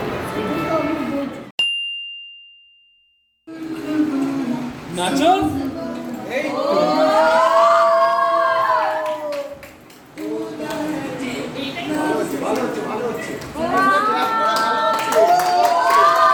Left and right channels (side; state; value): both; identical; correlation 1.00